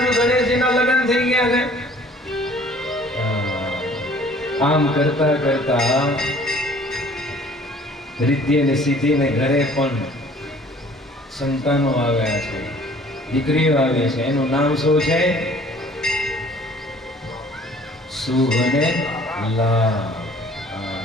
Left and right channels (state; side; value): normal; both; correlation 0.53